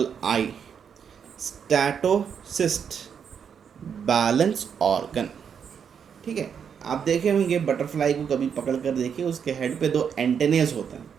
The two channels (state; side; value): quieter; left; 7.3 dB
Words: I, statocyst, balance organ. ठीक है, आप देखे होंगे बटरफ्लाई को कभी पकड़ कर देखिए, उसके हेड पे 2 एंटेनेस होते हैं,